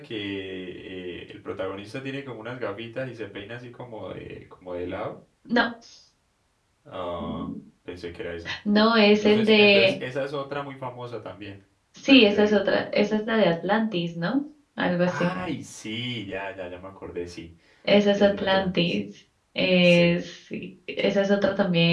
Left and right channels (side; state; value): both; identical; correlation 1.00